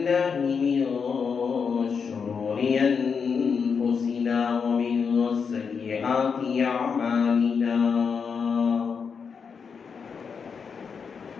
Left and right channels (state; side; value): quieter; right; 6.0 dB